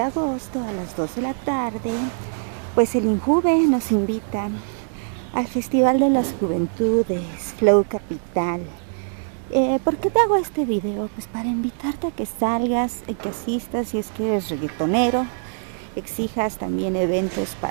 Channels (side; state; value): left; silent; digital silence